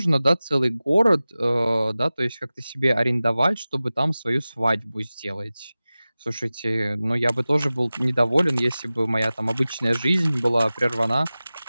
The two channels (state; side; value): inverted; both; correlation -0.97